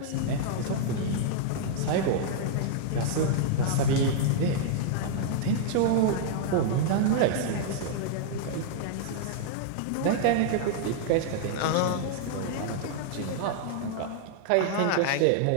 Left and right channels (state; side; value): different; both; correlation -0.01